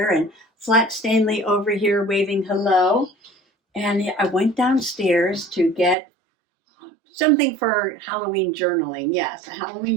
and Flat Stanley over here waving hello. And I went downstairs to get something for Halloween journaling. Yes,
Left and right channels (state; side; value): drops out; left; at 6.0 s